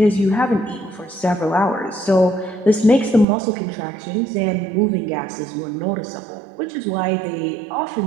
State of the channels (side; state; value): left; drops out; at 3.2 s